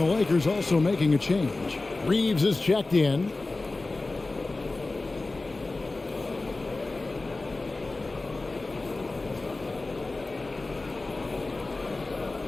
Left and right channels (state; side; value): quieter; right; 3.3 dB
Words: Lakers also making a change. Reeves is checked in.